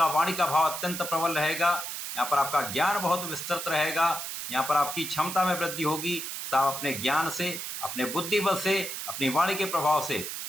वाणी का भाव अत्यंत प्रबल रहेगा, यहाँ पर आपका ज्ञान बहुत विस्तृत रहेगा, यहाँ पर आपकी क्षमता में वृद्धि होगी, तो आप अपने ज्ञान से, अपने बुद्धिबल से, अपनी वाणी के प्रभाव से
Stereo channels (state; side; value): noise; right; hiss, 6 dB below the sound